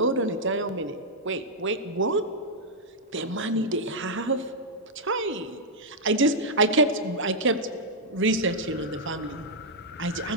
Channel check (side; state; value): both; normal; correlation -0.06